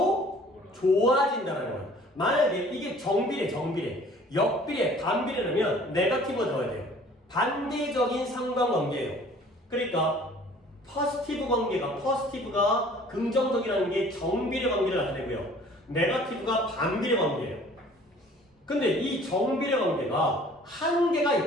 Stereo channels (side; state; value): both; normal; correlation 0.52